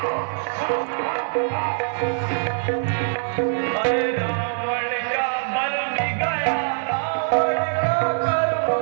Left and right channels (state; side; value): silent; left; digital silence